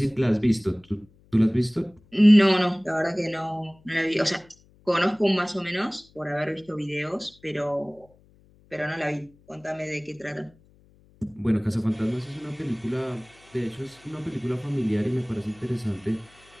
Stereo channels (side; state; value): left; noise; hum, 29 dB below the sound